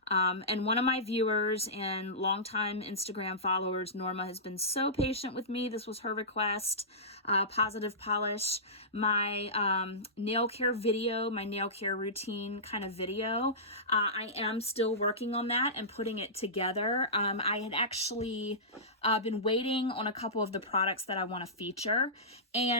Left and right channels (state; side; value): normal; both; correlation -0.18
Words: and one of my viewers and longtime Instagram followers, Norma, has been so patient with me. This was her request, Positive Polish, my nail care video, my nail care routine kind of video. I am still working on that and putting it together. I had actually I've been waiting on a couple of the products that I want to feature,